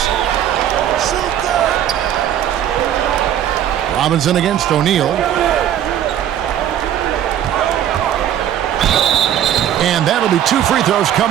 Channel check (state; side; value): quieter; left; 10.7 dB